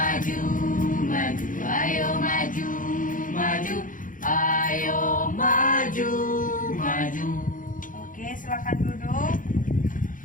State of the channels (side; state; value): right; late; 0.39 ms